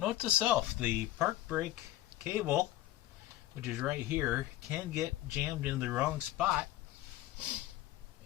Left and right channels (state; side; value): quieter; right; 15.0 dB